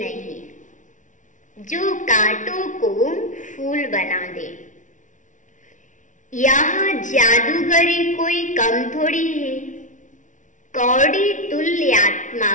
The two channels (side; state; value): right; late; 0.37 ms